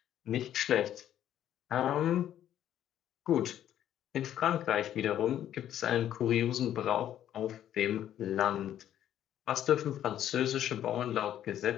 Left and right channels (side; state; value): right; quieter; 11.1 dB